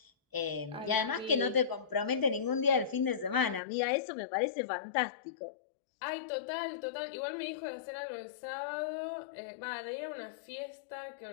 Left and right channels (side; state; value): right; drops out; at 3.6 s